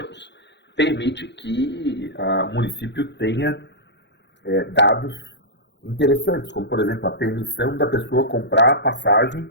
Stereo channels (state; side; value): late; right; 0.51 ms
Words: permite que o município tenha dados interessantes, como, por exemplo, a permissão da pessoa comprar a passagem